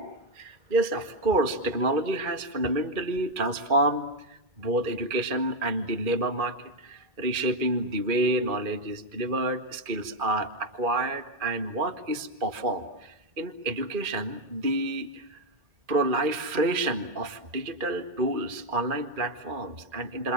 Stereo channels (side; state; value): left; late; 2.4 ms